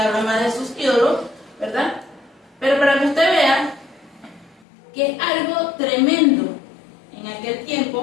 más de sus ídolos, ¿verdad? Pero para que usted vea que es algo tremendo en aquel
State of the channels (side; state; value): right; drops out; at 4.6 s